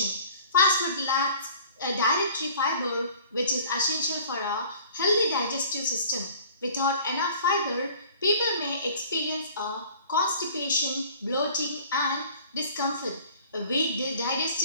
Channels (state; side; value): inverted; both; correlation -0.48